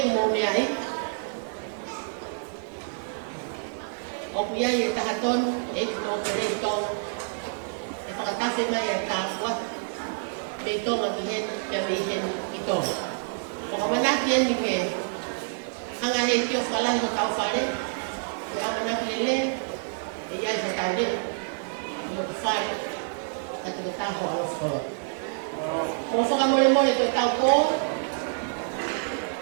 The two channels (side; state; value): left; silent; 60 dB below the other